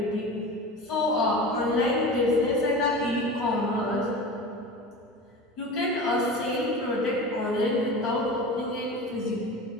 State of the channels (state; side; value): normal; both; correlation 0.32